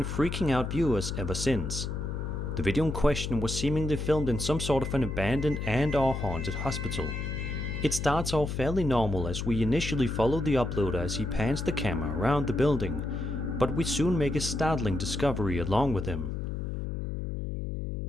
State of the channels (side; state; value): left; noise; hum, 3 dB below the sound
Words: freaking out viewers ever since. The video in question was seemingly filmed in some sort of an abandoned and/or haunted hospital. It starts off fairly normal as we initially follow the uploader as he pans the camera around the building, but we soon make a startling discovery along with him.